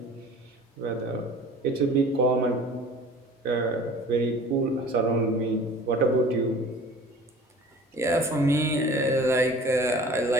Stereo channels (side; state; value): both; normal; correlation 0.45